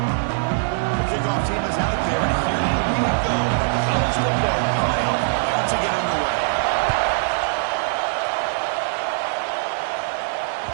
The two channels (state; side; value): silent; left; digital silence